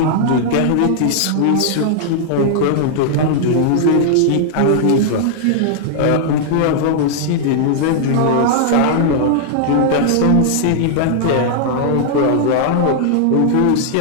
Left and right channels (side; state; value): both; different; correlation -0.01